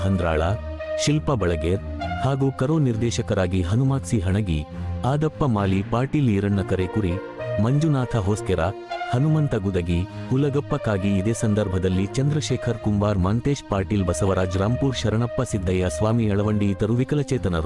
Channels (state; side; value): identical; both; correlation 1.00